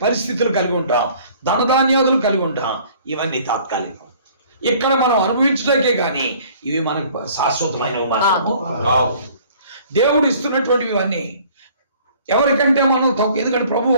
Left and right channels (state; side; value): inverted; both; correlation -0.54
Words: పరిస్థితులు కలిగి ఉంటాం, ధనధాన్యాదులు కలిగి ఉంటాం. ఇవన్నీ తాత్కాలికం. ఇక్కడ మనం అనుభవించడానికే కానీ ఇవి మనకు శాశ్వతమైనవి మాత్రము రావు. దేవుడు ఇస్తున్నటువంటివి ఇవన్నీ ఎవరికంటే మనం తక్కువ. ఎందుకంటే ప్రభు